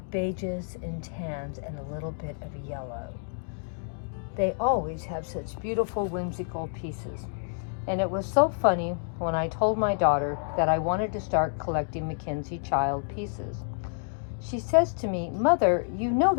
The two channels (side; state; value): right; silent; digital silence